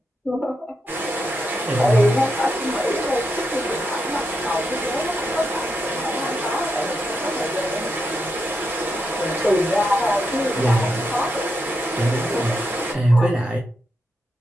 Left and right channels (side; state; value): both; normal; correlation 0.84